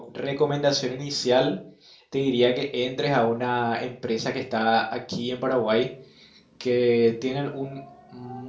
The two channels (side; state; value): both; identical; correlation 1.00